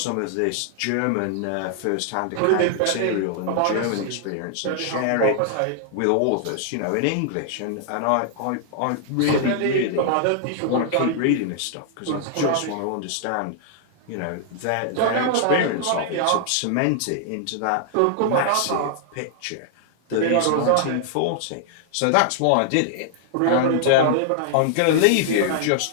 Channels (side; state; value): both; different; correlation 0.00